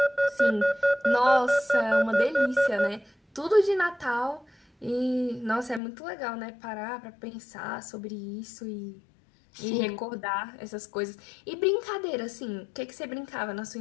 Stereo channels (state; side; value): drops out; right; at 5.8 s